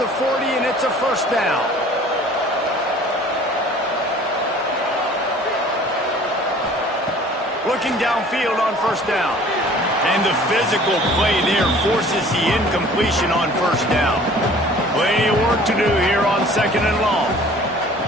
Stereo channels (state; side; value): normal; both; correlation 0.49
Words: 40, and it's a 1st down. Looking downfield on 1st down. And the physical play there forces the incompletion on 1st down. Plenty of work to do here on 2nd and long.